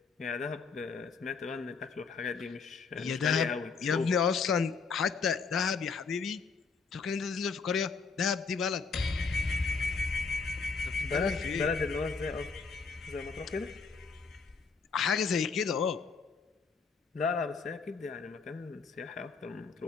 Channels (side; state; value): right; quieter; 5.0 dB